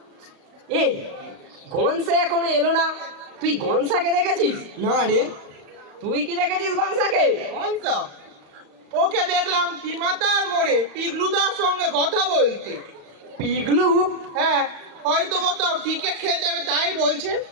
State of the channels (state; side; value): late; left; 35 ms